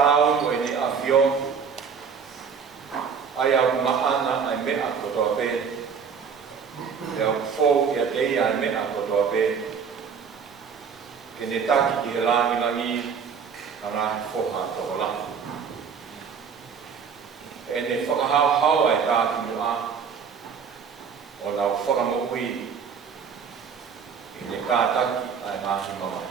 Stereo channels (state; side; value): quieter; left; 6.4 dB